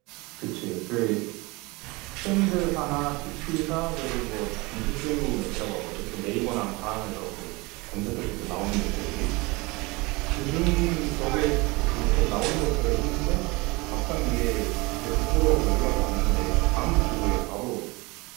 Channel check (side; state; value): left; quieter; 24.8 dB